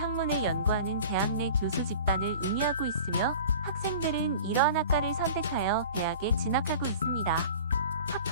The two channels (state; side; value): inverted; both; correlation -0.41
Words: 연구하는 대학 내 교수 집단을 의미하고 있으며 학생들은 이러한 학과를 선택하여 대학에 진학하고 있습니다.